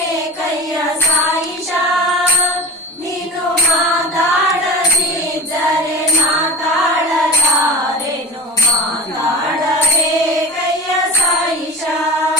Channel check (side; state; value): both; normal; correlation 0.35